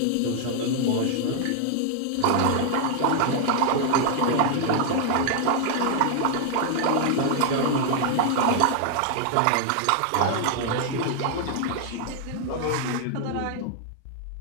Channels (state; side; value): different; both; correlation 0.00